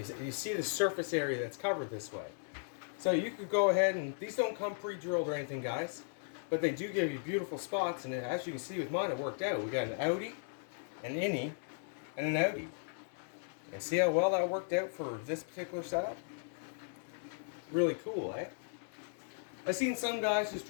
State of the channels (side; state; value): right; silent; digital silence